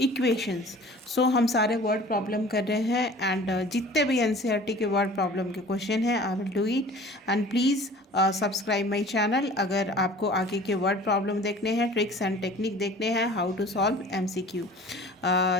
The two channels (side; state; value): both; normal; correlation 0.45